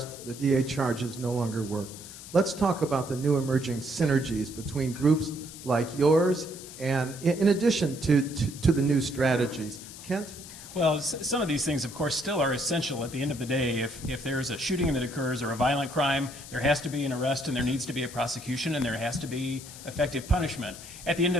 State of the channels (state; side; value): noise; left; hiss, 14 dB below the sound